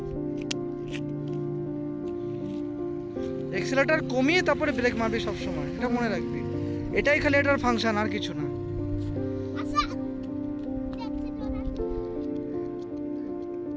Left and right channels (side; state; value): both; identical; correlation 1.00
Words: এক্সেলেটর কমিয়ে তারপরে ব্রেক মারবি সব সময়, এটা মনে রাখবি। এটাই খালি এটার ফাংশন, আর কিছু না।